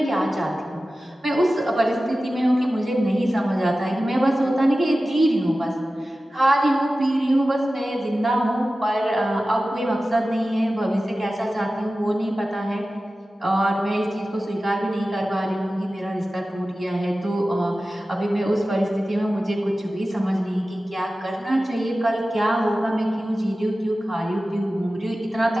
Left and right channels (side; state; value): both; normal; correlation 0.95